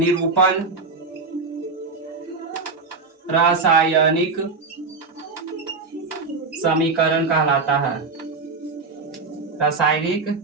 रासायनिक समीकरण कहलाता है। रासायनिक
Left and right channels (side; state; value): left; quieter; 4.2 dB